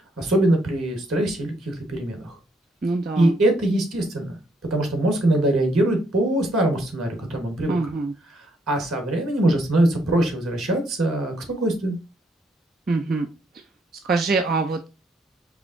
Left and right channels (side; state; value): both; normal; correlation 0.72